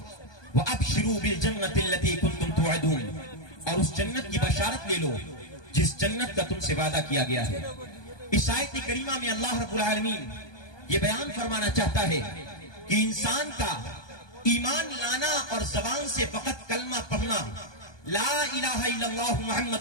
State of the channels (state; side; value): late; right; 1.2 ms